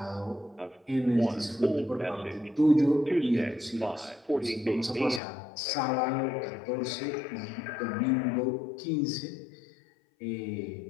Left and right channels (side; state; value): right; drops out; at 5.2 s